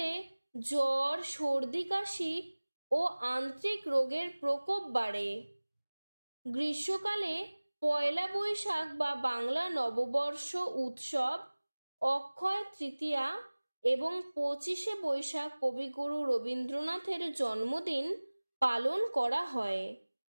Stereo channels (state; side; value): inverted; both; correlation -1.00